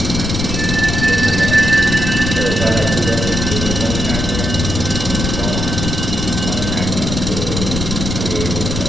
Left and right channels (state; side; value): noise; left; rumble, 3 dB below the sound